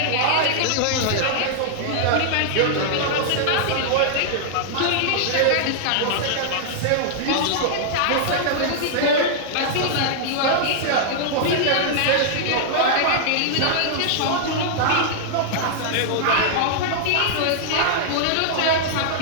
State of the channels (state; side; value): different; both; correlation -0.01